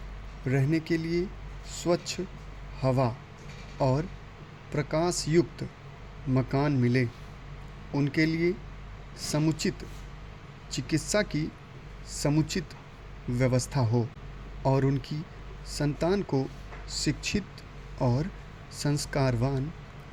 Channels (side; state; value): both; identical; correlation 1.00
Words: रहने के लिए स्वच्छ हवा और प्रकाश युक्त मकान मिले, उनके लिए समुचित चिकित्सा की समुचित व्यवस्था हो और उनकी संतान को शिक्षित और संस्कारवान